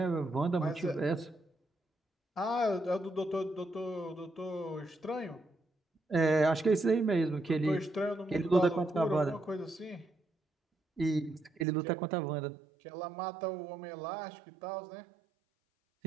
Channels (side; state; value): left; drops out; at 11.7 s